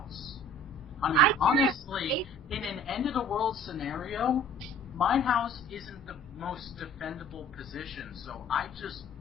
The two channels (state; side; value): normal; both; correlation 0.49